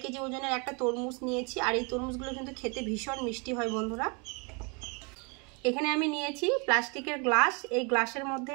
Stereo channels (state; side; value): quieter; left; 32.6 dB